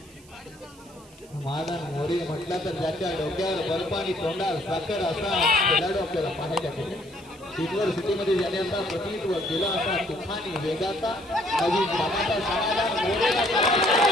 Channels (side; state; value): right; noise; hiss, 25 dB below the sound